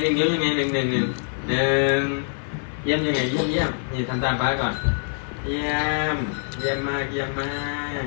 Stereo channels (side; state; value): right; silent; 62 dB below the other